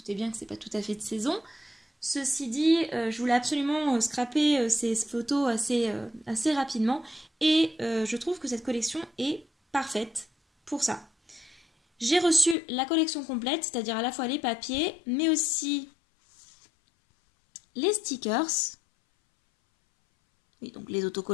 bien que c'est pas tout à fait de saison. Ceci dit, je voulais absolument scraper ces photos assez rapidement. Et je trouve que cette collection est parfaite pour ça. J'ai reçu la collection complète, c'est-à-dire à la fois les papiers, mais aussi les stickers. Oui, donc les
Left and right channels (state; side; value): drops out; right; at 12.6 s